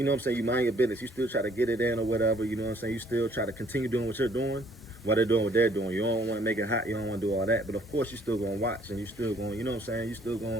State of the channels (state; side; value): normal; both; correlation 0.62